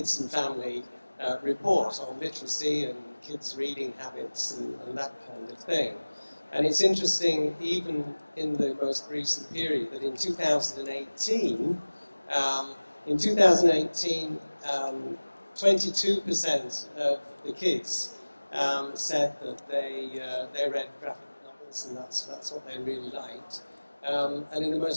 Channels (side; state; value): both; inverted; correlation -1.00